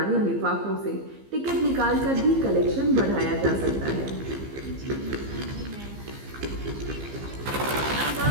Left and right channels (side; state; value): left; late; 15 ms